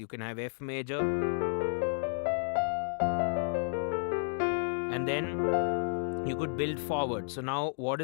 can have F major, and then you could build forward. So now what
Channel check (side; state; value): right; silent; digital silence